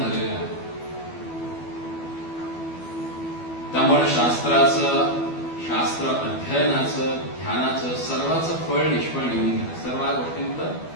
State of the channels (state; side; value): late; right; 12 ms